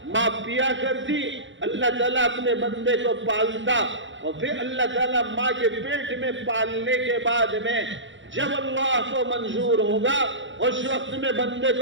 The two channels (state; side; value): late; left; 0.55 ms